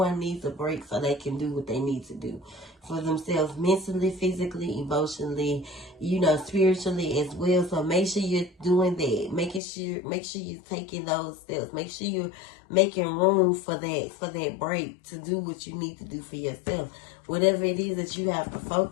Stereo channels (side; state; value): right; drops out; at 9.6 s